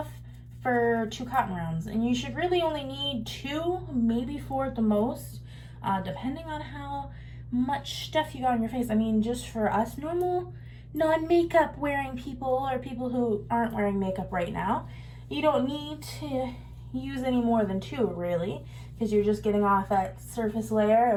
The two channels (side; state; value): both; identical; correlation 1.00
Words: for 2 cotton rounds. And you should really only need 2, maybe 4 at the most, depending on how much stuff you got on your face. I mean, just for us normal, non-makeup wearing people or people who aren't wearing makeup right now, you don't need to use any more than 2, really, because you're just getting off that surface layer